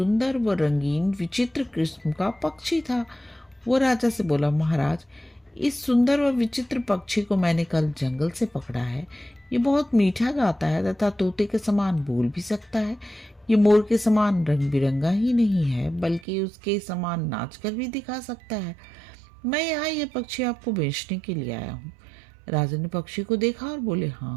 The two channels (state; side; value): drops out; left; at 16.2 s